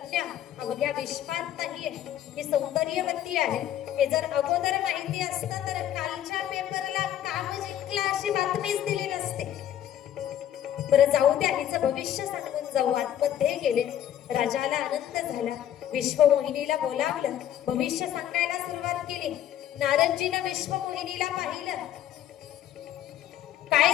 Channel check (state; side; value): quieter; right; 11.2 dB